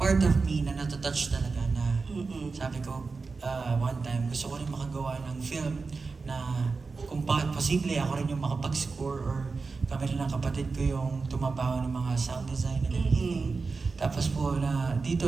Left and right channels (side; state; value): left; quieter; 4.3 dB